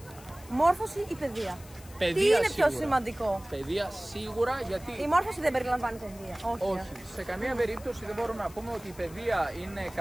Μόρφωση ή παιδεία? Παιδεία, τι είναι σίγουρα πιο σημαντικό? Παιδεία σίγουρα, γιατί. Η μόρφωση δεν περιλαμβάνει παιδεία. Όχι. Σε καμία περίπτωση δεν μπορούμε να πούμε ότι η παιδεία είναι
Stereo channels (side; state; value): left; noise; hiss, 21 dB below the sound